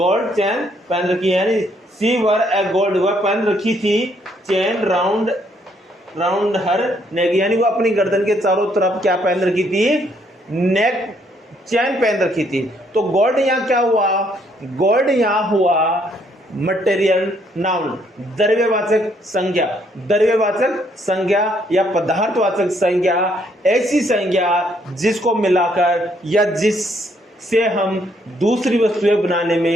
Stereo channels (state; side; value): normal; both; correlation 0.69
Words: चेन पहन रखी है। यानी शी वोर ए गोल्ड, वह पहन रखी थी चेन राउंड हर नेक, यानी वो अपनी गर्दन के चारों तरफ क्या पहन रखी थी? नेक चैन पहन रखी थी। तो गोल्ड यहाँ क्या हुआ? गोल्ड यहाँ हुआ मटेरियल नाउन, द्रव्यवाचक संज्ञा या पदार्थवाचक संज्ञा, ऐसी संज्ञा जिसको मिलाकर या जिससे हम दूसरी वस्तुएं बनाने